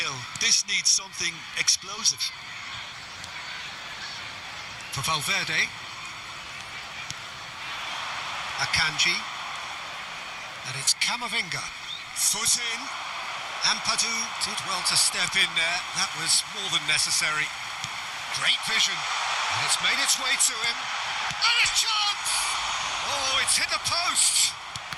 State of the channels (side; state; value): both; identical; correlation 1.00